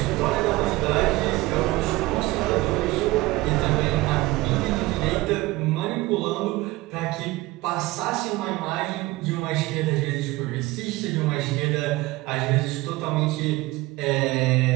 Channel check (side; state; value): left; quieter; 19.9 dB